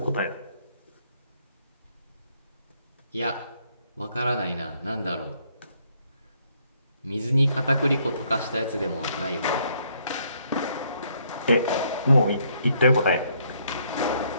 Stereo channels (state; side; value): inverted; both; correlation -0.70